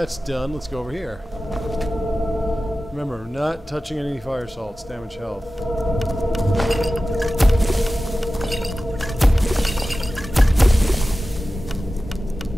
done, let's go over here. Remember, not touching any fire salts, damage health.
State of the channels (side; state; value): both; normal; correlation 0.95